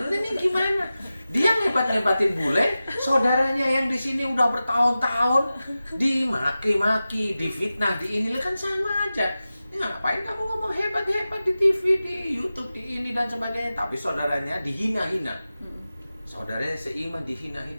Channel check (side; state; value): both; inverted; correlation -0.95